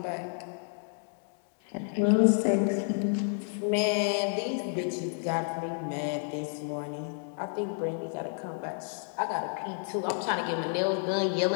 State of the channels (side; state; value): right; silent; 57 dB below the other